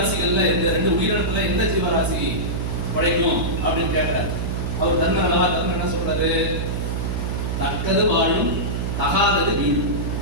இந்த ரெண்டு உயிரினத்துல எந்த ஜீவராசி உழைக்கும் அப்படின்னு கேட்கிறாரு. அவர் தர்மன் என்ன சொல்றாரு? தக்கது வாழும் தகாதது வீடும்.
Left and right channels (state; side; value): noise; right; hum, 1 dB below the sound